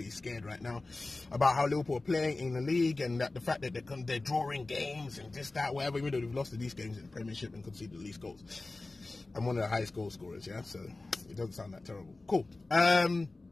scared right now about how Liverpool are playing in the league and that the fact that they're drawing games and this, that, whatever, even though they've lost to these games in the Premiership and conceded the least goals. I'm one of the highest goal scorers, yeah, so it doesn't sound that terrible. Cool.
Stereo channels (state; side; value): quieter; right; 3.2 dB